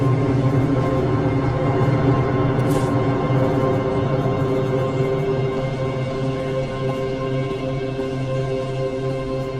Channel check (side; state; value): both; identical; correlation 1.00